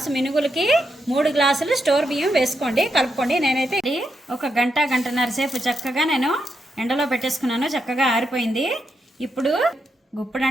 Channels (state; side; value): normal; both; correlation 0.83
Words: మినుగులకి 3 గ్లాసులు స్టోర్ బియ్యం వేసుకోండి, కలుపుకోండి. నేనైతే ఒక గంటన్నర సేపు చక్కగా నేను ఎండలో పెట్టేసుకున్నాను. చక్కగా ఆరిపోయింది. ఇప్పుడు గుప్పుడు